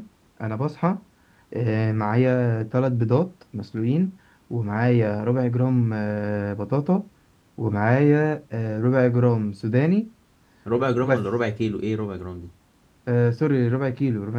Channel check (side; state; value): both; identical; correlation 1.00